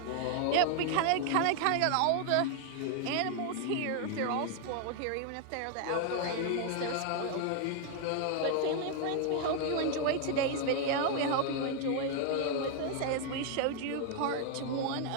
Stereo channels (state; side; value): different; both; correlation 0.00